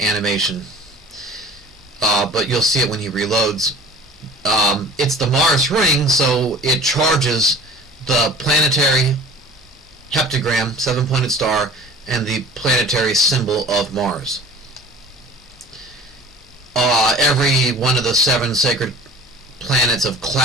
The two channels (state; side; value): normal; both; correlation 0.43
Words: animation, but you'll see it when he reloads. It's the Mars ring, so it charges the planetary heptagram, 7-pointed star, and the planetary symbol of Mars. Every one of the 7 sacred planets of